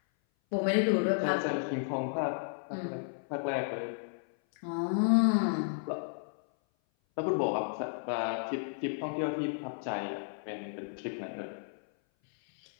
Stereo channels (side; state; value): right; silent; 56 dB below the other